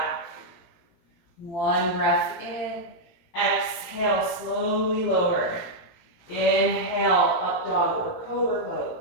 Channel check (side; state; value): right; late; 18 ms